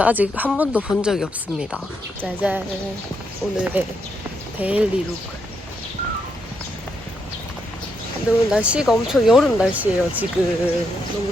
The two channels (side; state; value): both; normal; correlation 0.79